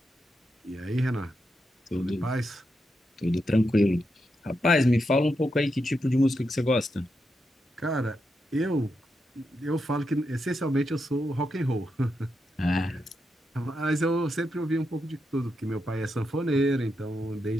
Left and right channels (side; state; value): both; normal; correlation 0.85